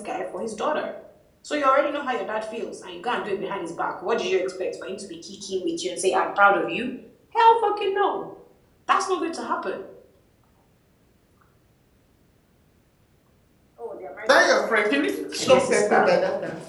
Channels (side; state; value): both; identical; correlation 1.00